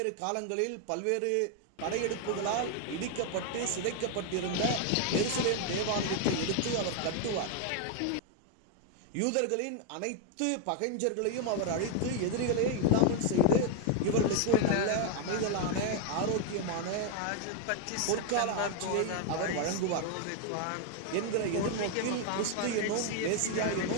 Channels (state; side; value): different; both; correlation 0.01